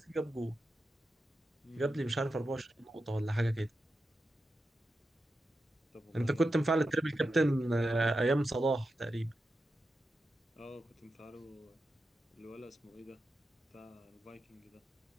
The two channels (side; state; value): both; normal; correlation 0.89